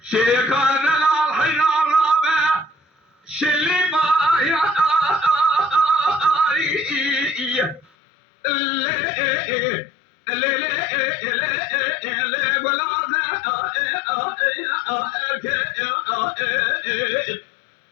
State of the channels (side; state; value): right; drops out; at 7.9 s